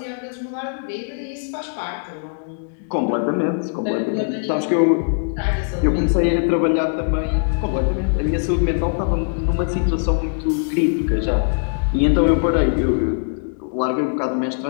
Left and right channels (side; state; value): right; silent; digital silence